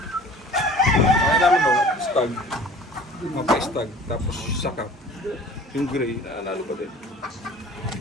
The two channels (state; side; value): normal; both; correlation 0.46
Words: Kaya namin no, stag. Mapa-stag, tapos sakap. Yung gray, nanalo pa din.